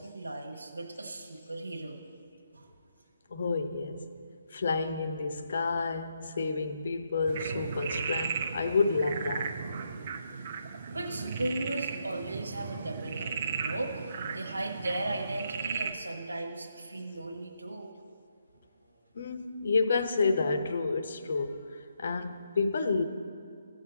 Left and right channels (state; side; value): inverted; both; correlation -0.79